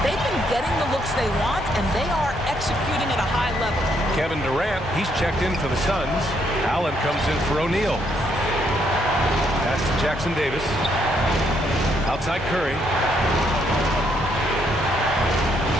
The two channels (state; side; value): normal; both; correlation 0.73